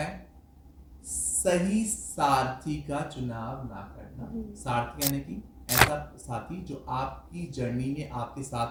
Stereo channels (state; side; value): identical; both; correlation 1.00